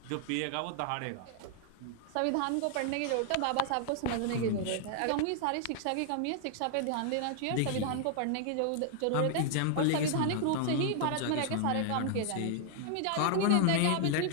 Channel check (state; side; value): different; both; correlation 0.00